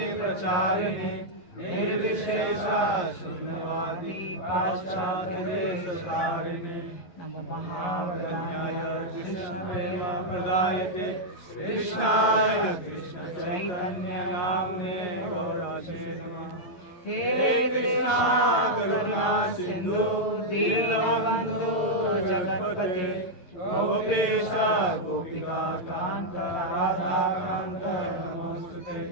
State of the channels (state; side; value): late; right; 11 ms